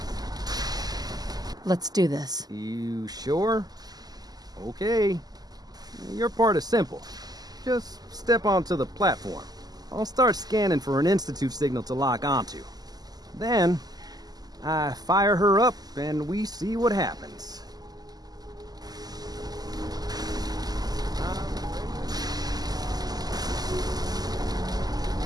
Let's do this. You sure? Okay. Your part is simple. Just step onto the platform. I'll start scanning for an Institute signal to lock onto. Then, I fire her up and we see what happens.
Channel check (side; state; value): left; late; 0.19 ms